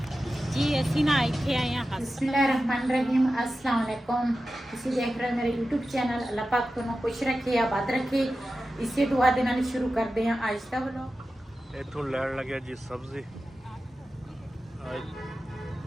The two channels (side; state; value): both; normal; correlation 0.93